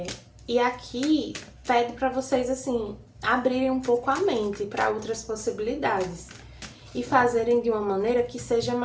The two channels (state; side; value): identical; both; correlation 1.00